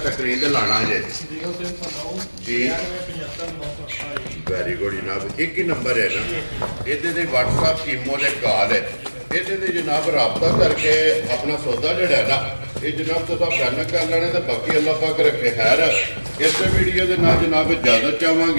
ਸਕਰੀਨ ਤੇ ਲਾਣਾ ਜੇ 0309 ਜੀ 95 ਵੈਰੀ ਗੁੱਡ ਜਨਾਬ ਇੱਕ ਹੀ ਨੰਬਰ ਹੈ ਨਾ ਇਹਦੇ ਤੇ WhatsApp ਈਮੋ ਦੇ ਕਾਲ ਹੈ ਇਹਦੇ ਤੇ ਜਨਾਬ ਰਾਬਤਾ ਕਰਕੇ ਆਪਣਾ ਸੌਦਾ ਜਿਹੜਾ ਹੈ ਨਾ ਇਹ ਜਨਾਬ ਤੁਸੀਂ ਫੈਨ ਕਰ ਲੈਣੇ ਤੇ ਬਾਕੀ ਅੱਲਾਹ ਪਾਕ ਰੱਖੇ ਖੈਰ ਇਸੇ ਵੀਡੀਓ ਦੇ ਨਾਲ ਜਨਾਬ ਇਜਾਜ਼ਤ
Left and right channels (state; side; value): inverted; both; correlation -1.00